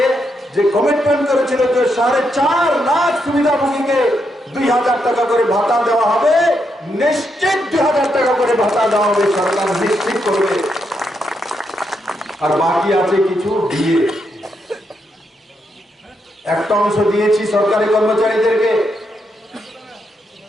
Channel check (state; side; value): normal; both; correlation 0.80